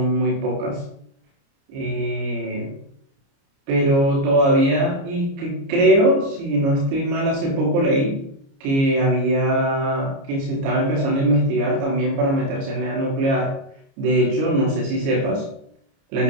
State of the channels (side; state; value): left; late; 29 ms